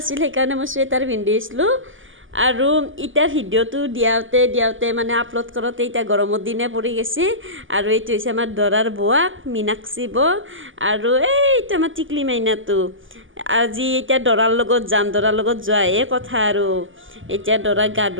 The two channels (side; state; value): left; late; 0.57 ms